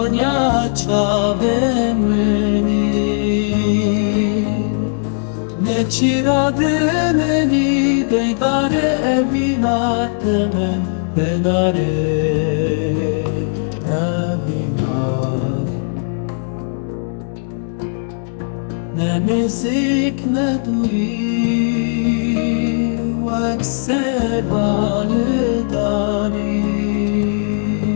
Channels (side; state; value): right; silent; 67 dB below the other